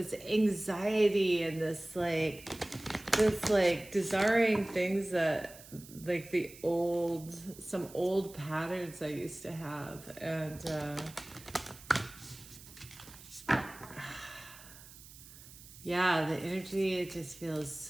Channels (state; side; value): noise; right; hiss, 19 dB below the sound